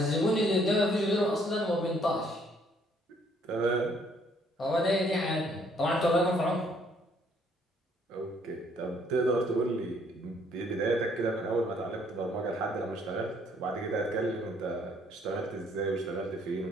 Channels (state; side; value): normal; both; correlation 0.64